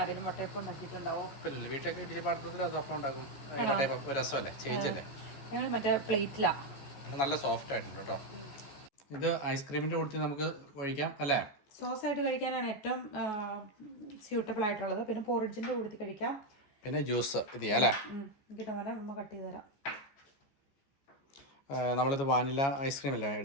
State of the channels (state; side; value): late; right; 14 ms